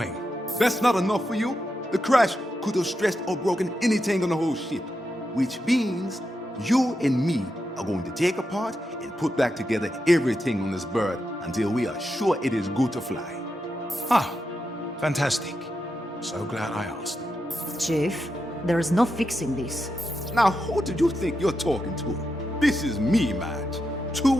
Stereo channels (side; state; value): both; normal; correlation 0.86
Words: That's not enough for you? The crash could have stressed or broken anything on the whole ship. Which means you and me are going to take apart and put back together everything on this bird until we are sure it is good to fly. Ah, fantastic. So glad I asked. Chief, there is no fixing this. Now, who do you think you're talking to? This is me, Madge. 2